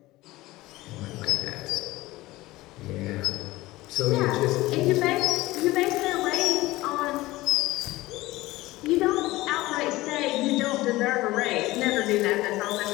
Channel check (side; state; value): right; quieter; 18.7 dB